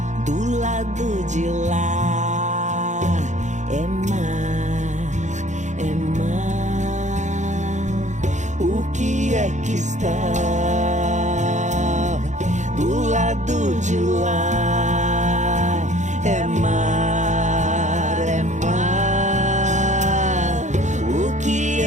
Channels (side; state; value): left; late; 0.35 ms